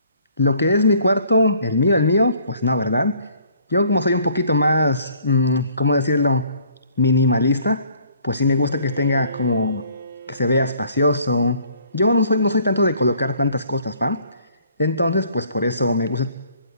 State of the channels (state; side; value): inverted; both; correlation -0.59